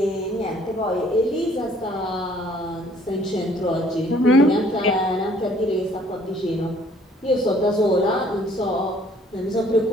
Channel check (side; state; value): both; normal; correlation 0.59